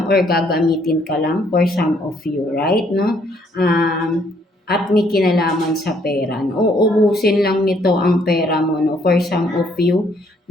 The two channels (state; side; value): normal; both; correlation 0.67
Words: or gagamitin ka lang for some of you, right, no, at may kinalaman sa pera, no, uubusin lang nito ang pera mo, no, for some of you